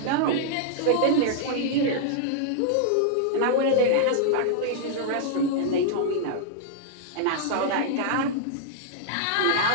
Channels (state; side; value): different; both; correlation -0.01